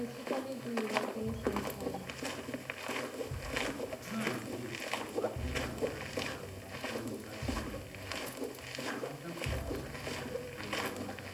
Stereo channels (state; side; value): identical; both; correlation 1.00